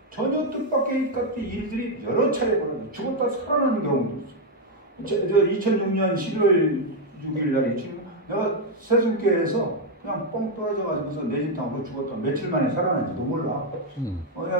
전혀 뜻밖의 일들이 여러 차례 벌어져요. 죽었다 살아나는 경우도 있어요. 2006년 11월 6일 날이 내가 세순교회에서 그냥 뻥 떨어져가지고서 내 집 당하고 죽었다. 며칠 만에 살아난지도 몰라.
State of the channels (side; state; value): both; normal; correlation 0.02